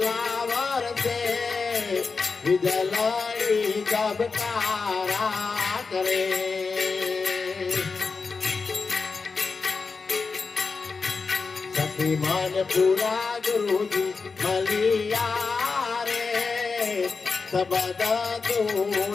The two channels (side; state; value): right; quieter; 4.6 dB